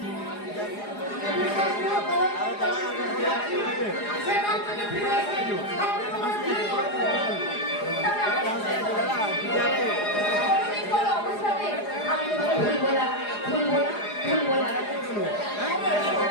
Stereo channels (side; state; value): right; late; 4.8 ms